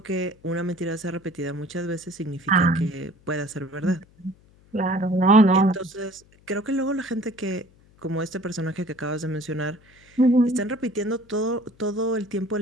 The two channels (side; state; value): left; noise; hum, 29 dB below the sound